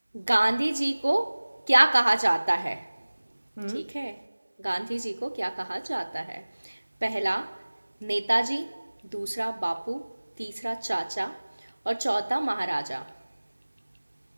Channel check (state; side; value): inverted; both; correlation -1.00